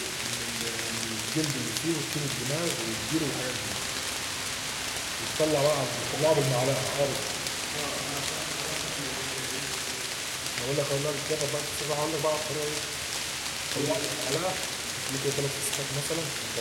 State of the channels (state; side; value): identical; both; correlation 1.00